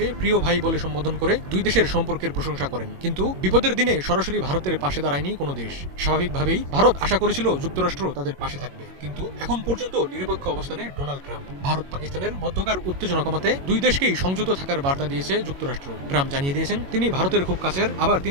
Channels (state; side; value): late; left; 22 ms